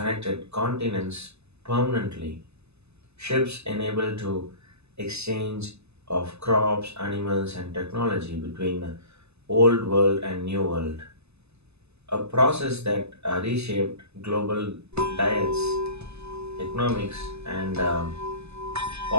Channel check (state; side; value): late; left; 0.80 ms